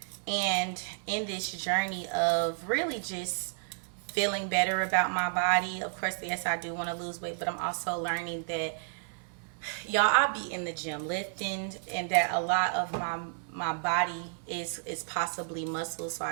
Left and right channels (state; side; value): silent; left; 56 dB below the other